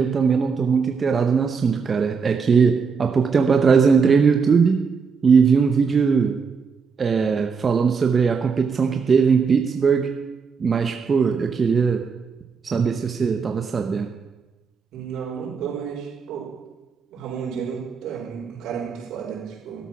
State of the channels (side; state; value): left; quieter; 5.6 dB